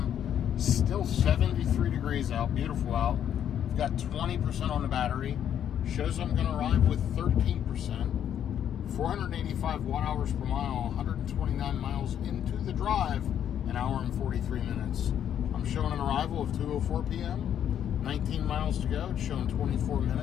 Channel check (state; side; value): quieter; right; 9.7 dB